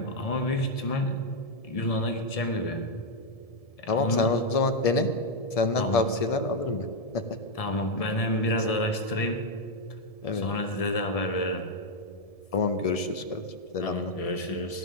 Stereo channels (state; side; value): late; right; 1.7 ms